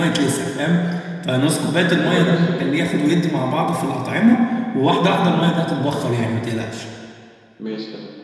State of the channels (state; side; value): identical; both; correlation 1.00